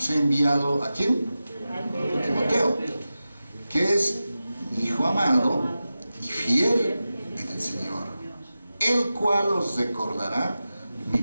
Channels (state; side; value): inverted; both; correlation -0.93